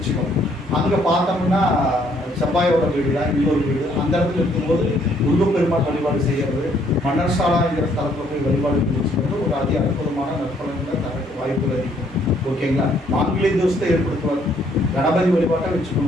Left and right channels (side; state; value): both; normal; correlation 0.66